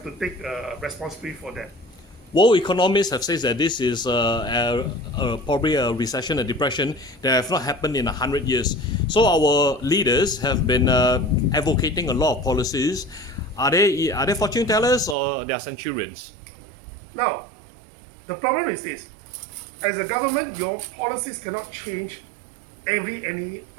to take responsibility for that. World economists have said that this is probably a recession, a depression that have not happened in 100 years. So our leaders have been advocating a lot of policies. Are they fortune tellers or they are centurions? Now, the problem is this: as a government, your policies cannot change any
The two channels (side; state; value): left; drops out; at 15.2 s